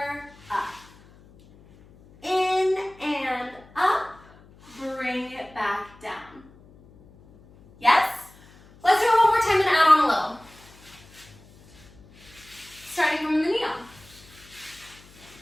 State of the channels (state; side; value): noise; left; hum, 25 dB below the sound